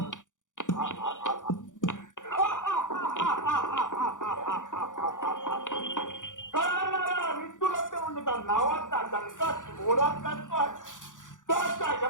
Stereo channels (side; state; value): right; late; 0.87 ms